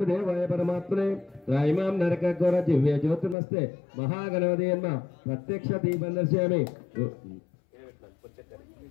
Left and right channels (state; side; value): drops out; right; at 3.4 s